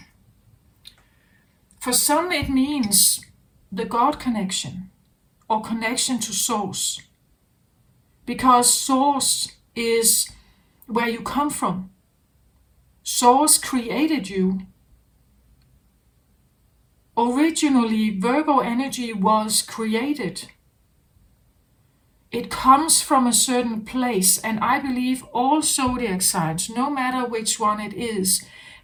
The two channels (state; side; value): identical; both; correlation 1.00